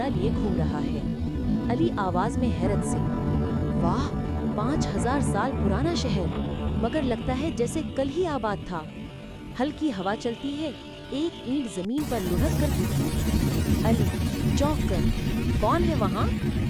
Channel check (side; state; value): both; identical; correlation 1.00